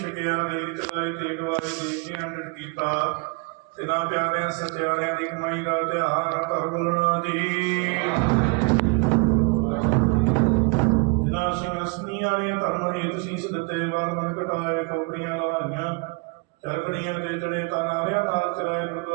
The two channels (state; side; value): quieter; left; 31.7 dB